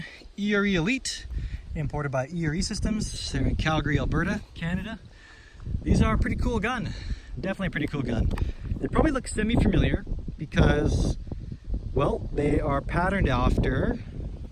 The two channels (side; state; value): both; identical; correlation 1.00